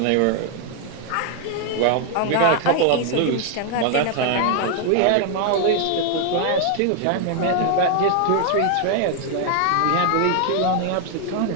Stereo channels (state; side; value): different; both; correlation 0.00